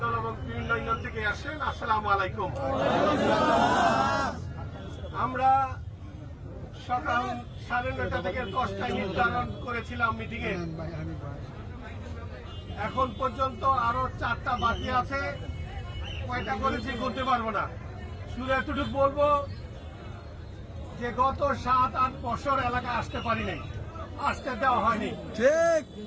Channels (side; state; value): both; identical; correlation 1.00